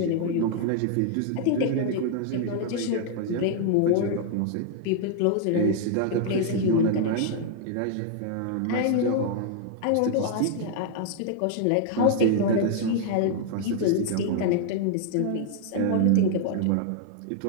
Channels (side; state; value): both; different; correlation 0.00